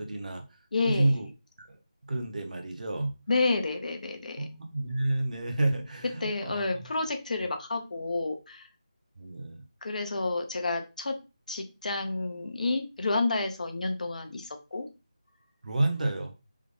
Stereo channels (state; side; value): inverted; both; correlation -0.87